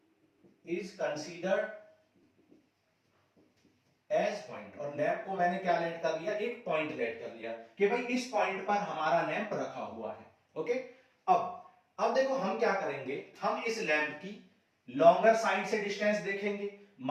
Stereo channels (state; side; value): identical; both; correlation 1.00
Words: is considered as point. और लैंप को मैंने क्या लेट कर लिया? एक पॉइंट लेट कर लिया कि भाई इस पॉइंट पर हमारा लैंप रखा हुआ है। ओके, अब देखो हम क्या करेंगे? हम इस लैंप की लॉन्गर साइड से डिस्टेंस देखेंगे।